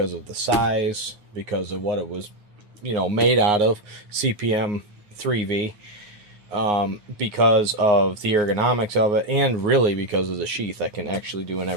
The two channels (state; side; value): late; left; 9.6 ms